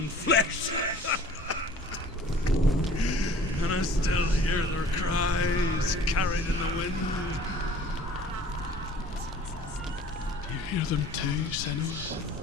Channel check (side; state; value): both; normal; correlation 0.49